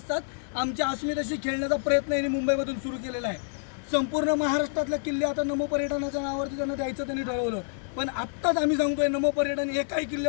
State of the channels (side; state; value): right; silent; digital silence